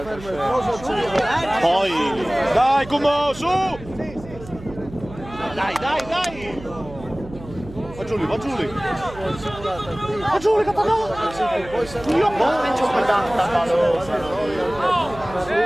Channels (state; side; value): noise; right; hum, 16 dB below the sound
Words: Poi! dai Kumo, su! Dai, dai, dai! Va Giuli, va Giuli! Va Giuli, capitano! Io non ci